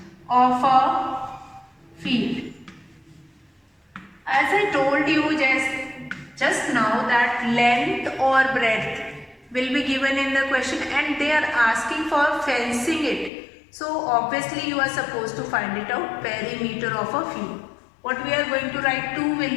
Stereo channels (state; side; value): drops out; right; at 13.3 s